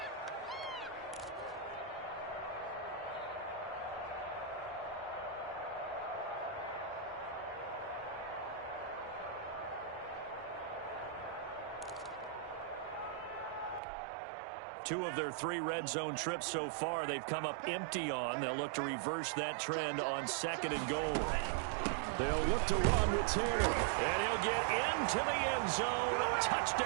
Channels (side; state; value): left; drops out; at 13.8 s